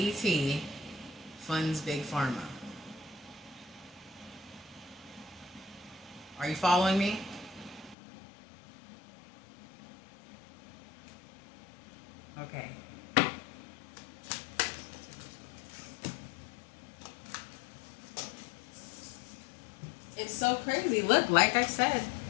funds Big Pharma. Are you following me? Okay. It's so crazy. Look, like I said,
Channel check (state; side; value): drops out; right; at 8.0 s